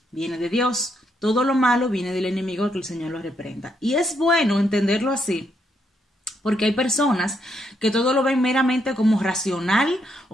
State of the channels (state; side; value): normal; both; correlation 0.77